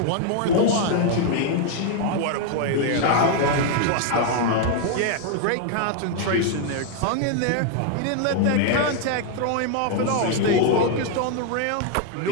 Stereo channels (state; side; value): different; both; correlation 0.00